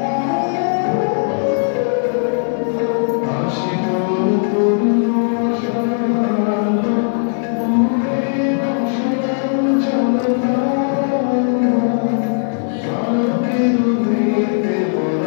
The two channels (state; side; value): silent; right; digital silence